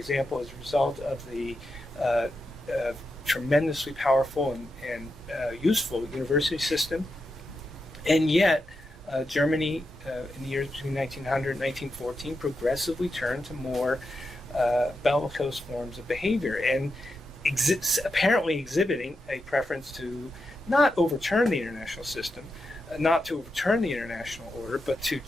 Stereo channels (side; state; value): both; normal; correlation 0.87